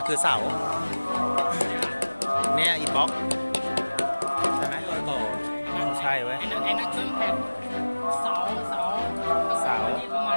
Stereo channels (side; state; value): both; inverted; correlation -1.00